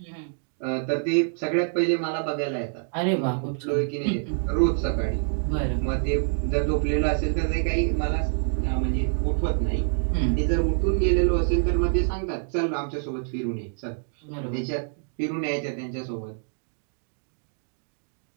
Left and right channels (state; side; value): silent; left; digital silence